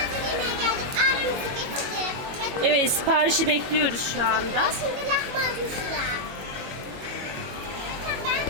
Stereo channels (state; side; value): late; left; 22 ms